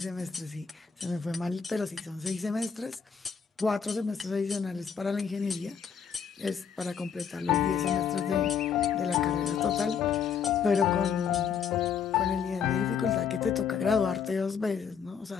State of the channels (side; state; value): right; quieter; 6.9 dB